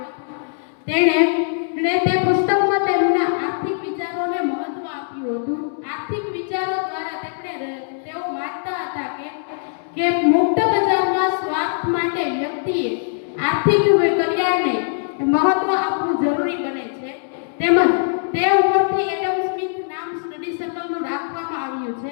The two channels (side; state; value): right; silent; digital silence